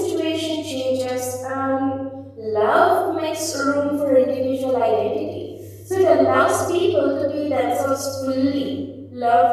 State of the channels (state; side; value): identical; both; correlation 1.00